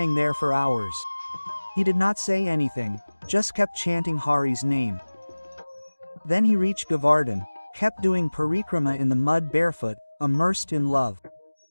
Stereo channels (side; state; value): both; inverted; correlation -1.00